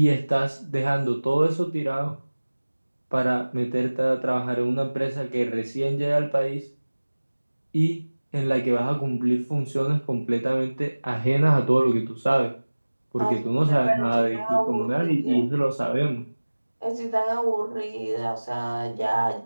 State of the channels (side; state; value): both; inverted; correlation -1.00